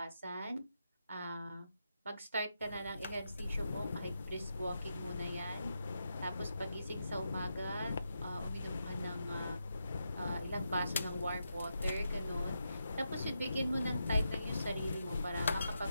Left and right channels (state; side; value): inverted; both; correlation -0.85